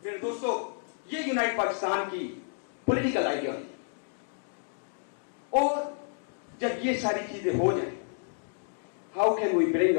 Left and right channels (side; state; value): right; silent; digital silence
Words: میرے دوستو, یہ یونائٹ پاکستان کی پولیٹیکل آئیڈیالوجی. اور جب یہ ساری چیزیں ہو جائیں, how can we bring